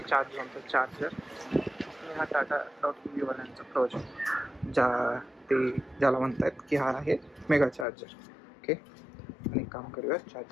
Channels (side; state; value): right; drops out; at 7.9 s